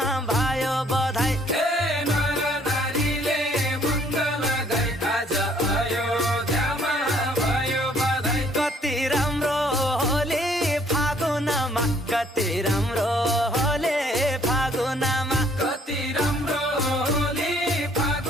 भयो बधाई। नर नारीले मङ्गल गाई आज अयोध्यामा भयो बधाई। कति राम्रो होली फागुनमा, कति राम्रो होली फागुनमा, कति राम्रो होली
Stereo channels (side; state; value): both; normal; correlation 0.63